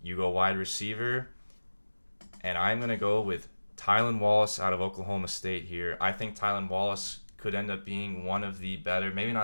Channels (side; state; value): both; inverted; correlation -1.00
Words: you go wide receiver, and I'm going to go with Tylan Wallace out of Oklahoma State here. I think Tylan Wallace could end up being one of the better, maybe